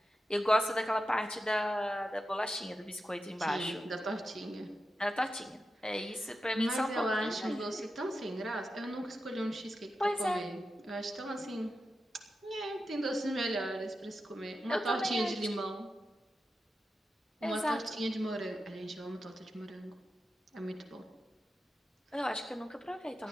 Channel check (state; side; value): normal; both; correlation 0.90